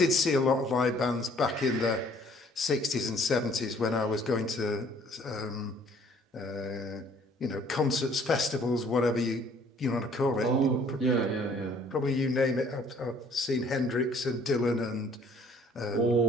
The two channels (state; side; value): normal; both; correlation 0.58